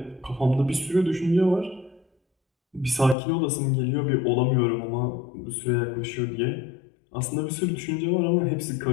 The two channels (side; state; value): right; drops out; at 3.2 s